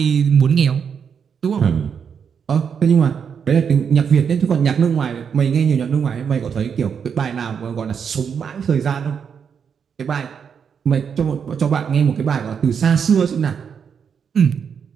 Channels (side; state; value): left; quieter; 7.0 dB